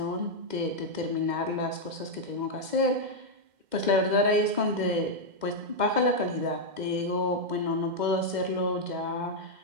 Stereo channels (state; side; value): late; left; 2.1 ms